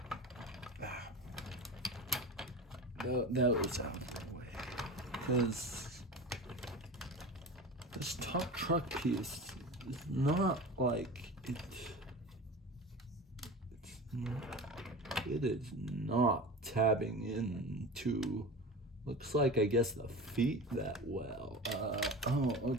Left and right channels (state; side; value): normal; both; correlation 0.31